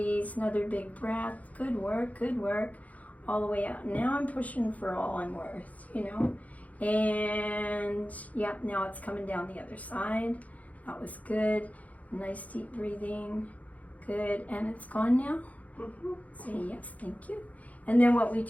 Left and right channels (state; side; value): late; right; 0.071 ms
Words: Another big breath. Good work, good work. All the way out. Now I'm pushing for all I'm worth, you know. And yeah, now it's coming down the other side. That was good. Nice deep breathing. Good. And it's gone now? Mm-hmm. Say yes, thank you. And then what we